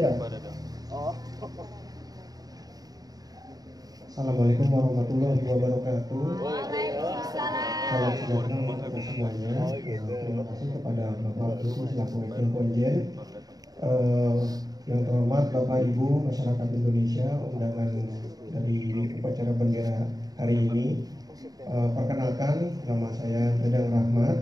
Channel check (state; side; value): late; left; 0.18 ms